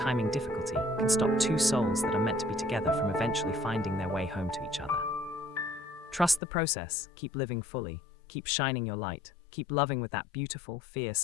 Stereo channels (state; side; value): drops out; right; at 6.4 s